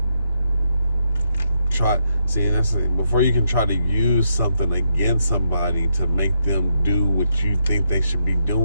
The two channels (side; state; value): both; inverted; correlation -0.79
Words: try, that's the thing. Before you can try to use something against somebody to make them do what you think they should be